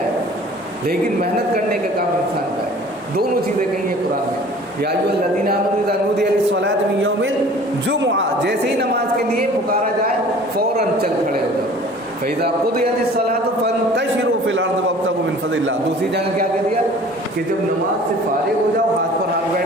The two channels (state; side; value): normal; both; correlation 0.47